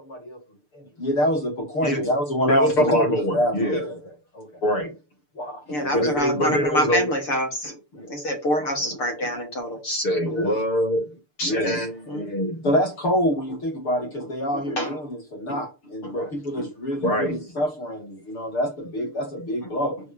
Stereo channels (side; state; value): right; late; 6.8 ms